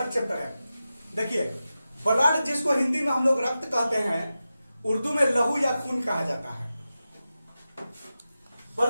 चैप्टर है। देखिए, ब्लड जिसको हिंदी में हम लोग रक्त कहते हैं, उर्दू में लहू या खून कहा जाता है।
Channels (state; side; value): inverted; both; correlation -0.92